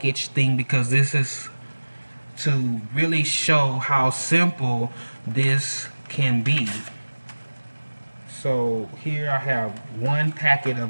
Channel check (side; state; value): both; inverted; correlation -1.00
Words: thing because this is to really show how simple this can be. So here I have one packet